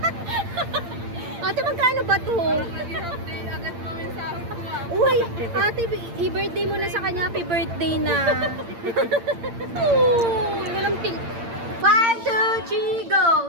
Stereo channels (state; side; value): late; left; 8.7 ms